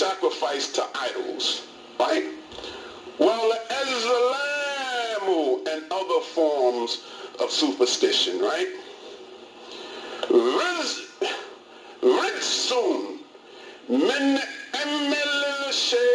to idols, right? والأزلام, and other forms of superstition, right? Rizsun, min amil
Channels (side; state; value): both; identical; correlation 1.00